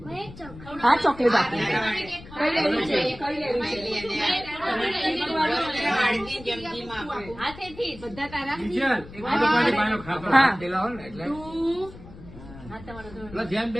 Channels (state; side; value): noise; left; rumble, 17 dB below the sound